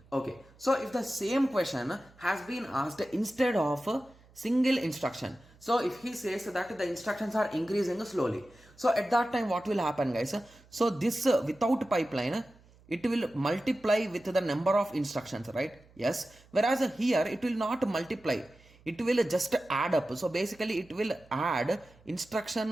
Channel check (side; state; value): right; noise; hum, 27 dB below the sound